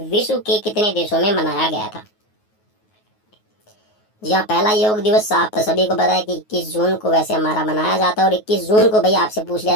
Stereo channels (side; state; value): right; late; 9.4 ms